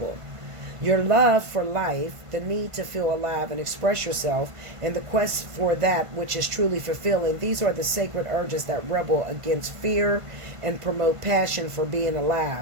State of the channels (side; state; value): left; late; 1.5 ms